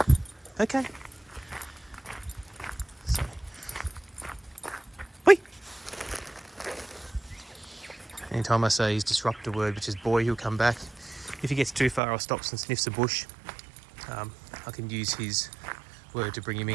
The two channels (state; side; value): drops out; left; at 12.0 s